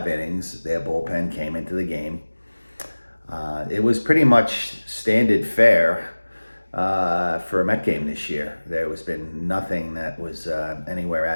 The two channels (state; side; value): inverted; both; correlation -1.00